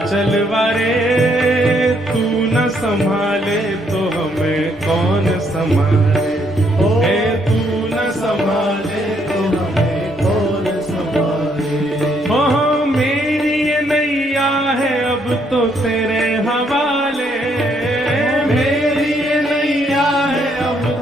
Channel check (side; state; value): both; normal; correlation 0.71